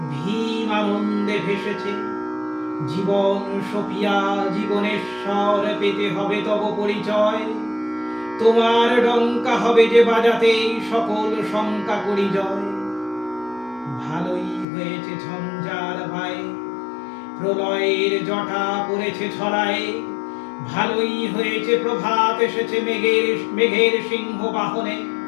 ভীম আনন্দে ভেসেছে। জীবন সপিয়া জীবনেশ্বর পেতে হবে তব পরিচয়, তোমার ডঙ্কা হবে যে বাজাতে সকল শঙ্কা করি জয়। ভালোই হয়েছে ঝঞ্ঝার ভাই, প্রলয়ের জটা পড়েছে ছড়ায়। ভালোই হয়েছে প্রভাত এসেছে মেঘের সিংহ বাহনে।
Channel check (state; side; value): drops out; right; at 14.7 s